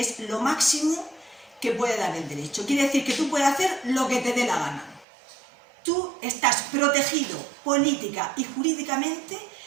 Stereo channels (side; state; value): left; drops out; at 5.1 s